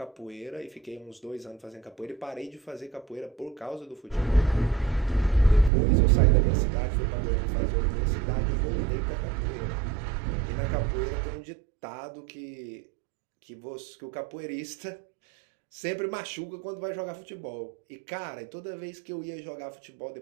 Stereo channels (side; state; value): left; drops out; at 5.7 s